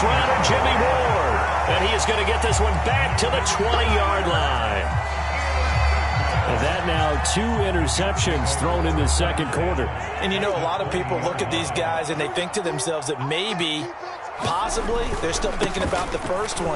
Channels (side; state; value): both; identical; correlation 1.00